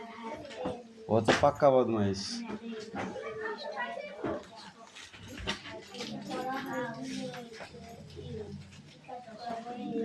ও হচ্ছে পাক্কা বদমাইশ।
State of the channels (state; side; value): identical; both; correlation 1.00